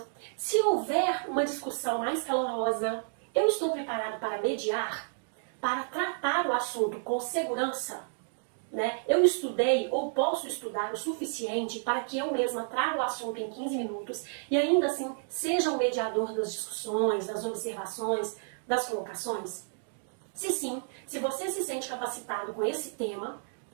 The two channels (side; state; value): left; silent; digital silence